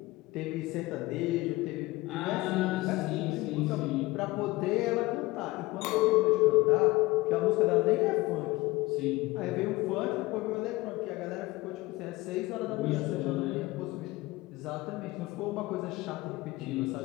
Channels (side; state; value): right; quieter; 20.1 dB